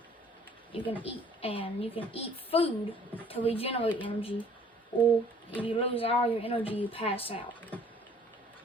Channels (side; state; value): both; normal; correlation 0.56